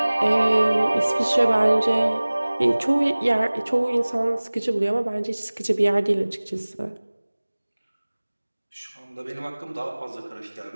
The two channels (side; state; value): both; inverted; correlation -1.00